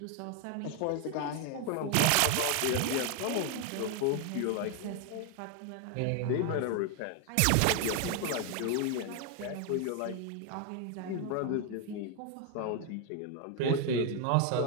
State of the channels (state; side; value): different; both; correlation 0.01